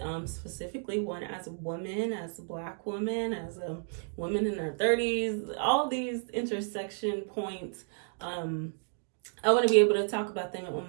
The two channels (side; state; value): left; silent; digital silence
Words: specifically one as a woman, as a Black woman, as a woman in her 30s, all these intersection points. I want to be able to talk about them on